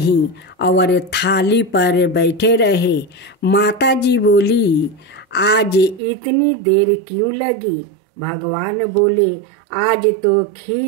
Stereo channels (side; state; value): left; drops out; at 6.0 s